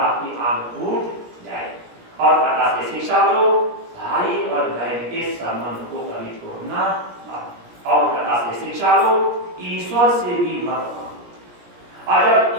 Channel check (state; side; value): late; left; 17 ms